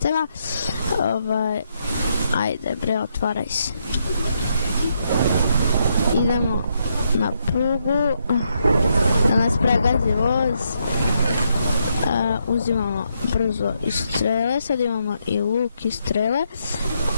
Ajde bre, otvaraj se. Idemo na prugu, da nas pregazi voz. Uzimamo brzo i strele, sad imamo i luk i strele.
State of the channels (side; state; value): both; inverted; correlation -0.78